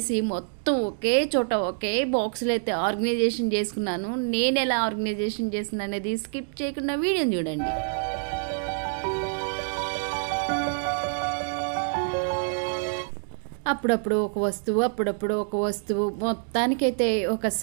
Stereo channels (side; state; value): left; silent; digital silence